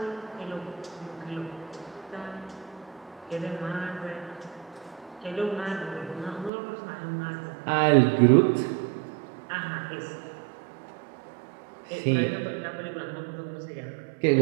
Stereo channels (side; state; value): left; drops out; at 6.5 s